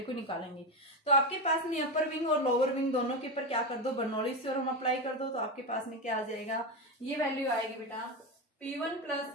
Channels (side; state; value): both; normal; correlation 0.15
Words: को निकालेंगे। तो आपके पास में अपर विंग और लोअर विंग दोनों के ऊपर क्या कर दो, बर्नौलीज थ्योरम अप्लाई कर दो। तो आपके पास में क्या आ जाएगा, ये वैल्यू आएगी बेटा P1 प्लस